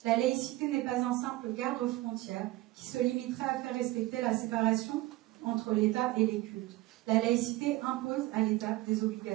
La laïcité n'est pas un simple garde-frontière qui se limiterait à faire respecter la séparation entre l'État et les cultes. La laïcité impose à l'État des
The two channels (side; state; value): left; quieter; 18.3 dB